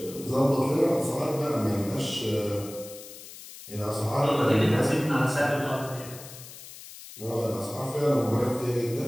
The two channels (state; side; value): noise; left; hiss, 15 dB below the sound